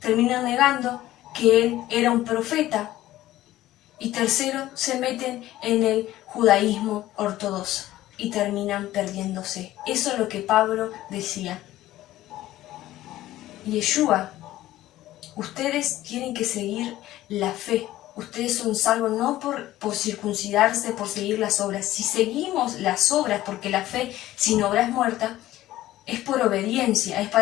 terminan negando que él era un profeta. Y tercero, se meten en el judaísmo ortodoxo y terminan perdiéndose. Eso es lo que Pablo decía. Yeshua, ustedes tienen que seguir la fe. Ustedes son salvos no por circuncidarse, por seguir las obras. Si seguimos las obras, porque la fe sin obra es muerta, es por obediencia, es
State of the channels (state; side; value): quieter; right; 15.0 dB